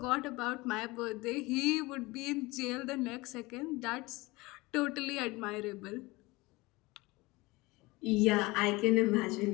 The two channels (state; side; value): quieter; right; 22.3 dB